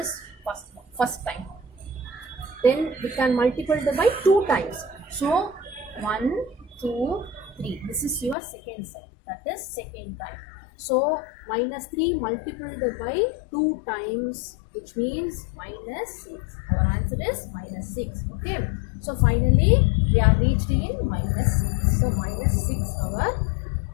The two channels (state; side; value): drops out; right; at 8.3 s